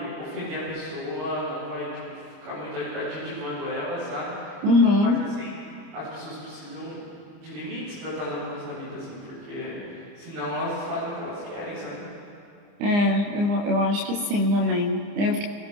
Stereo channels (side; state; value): left; late; 29 ms